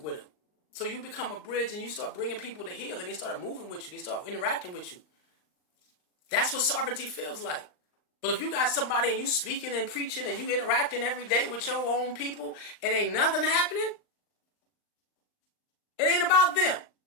with them. So you become a bridge and you start bringing people to heal and they start moving with you. They start interacting with you. That's what sovereignty feels like. But if you got somebody and you speaking and preaching and you interacting every day with your own people and ain't nothing happening, it ain't about them.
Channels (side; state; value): right; late; 39 ms